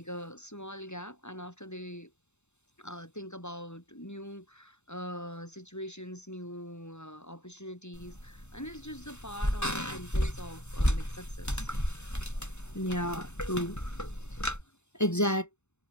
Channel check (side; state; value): right; late; 0.82 ms